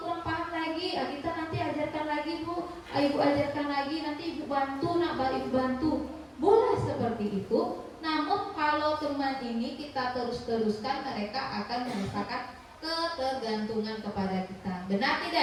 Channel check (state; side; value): identical; both; correlation 1.00